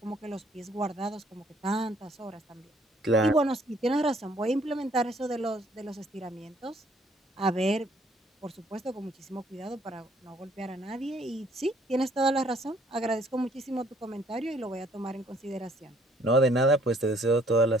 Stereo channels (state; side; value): normal; both; correlation 0.63